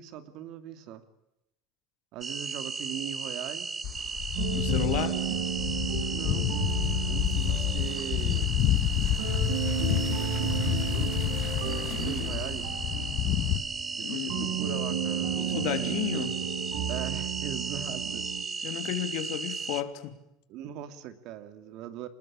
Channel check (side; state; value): both; normal; correlation 0.28